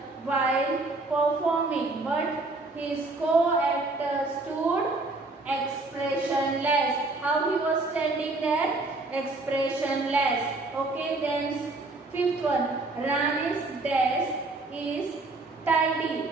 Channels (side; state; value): left; quieter; 3.2 dB